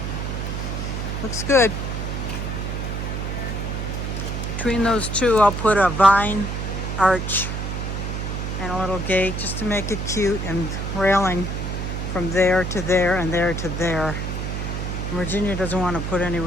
Looks good. Between those two, I'll put a vine arch and a little gate just to make it cute, and railing from there to there and there to there. Virginia doesn't want to put any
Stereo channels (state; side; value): noise; right; hum, 3 dB below the sound